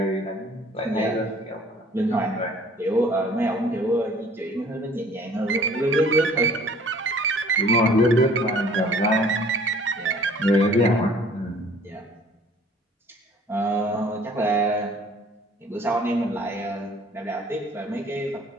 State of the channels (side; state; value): both; normal; correlation 0.53